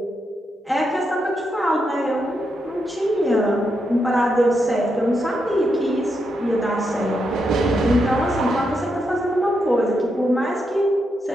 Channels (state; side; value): normal; both; correlation 0.83